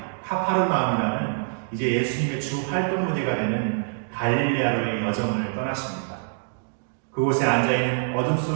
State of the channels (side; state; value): left; silent; digital silence